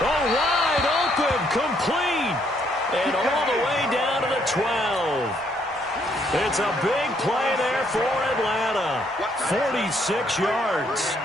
open, complete. And all the way down to the 12. It's a big play there for Atlanta. 46 yards.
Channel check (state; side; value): normal; both; correlation 0.70